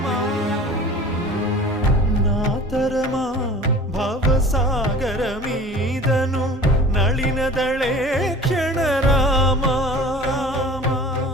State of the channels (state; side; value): normal; both; correlation 0.42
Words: నాతరమా భవసాగర మీదను నళినదళే క్షణ రామా